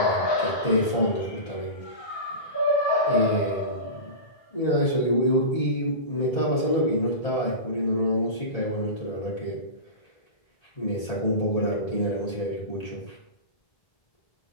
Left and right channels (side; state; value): right; late; 1.8 ms